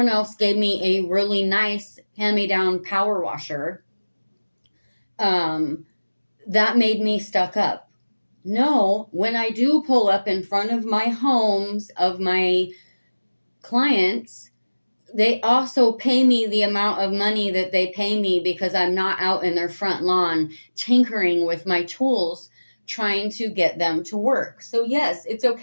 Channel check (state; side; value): inverted; both; correlation -1.00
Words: else gave me a really nice hand-me-down power washer, that made me stuck up. No, when I do pull up in front of my homes of my clients, they also pay me the amount of money that they pay me because I'm not out in their front lawn tinkering with my tools trying to get them to work. So yes, it's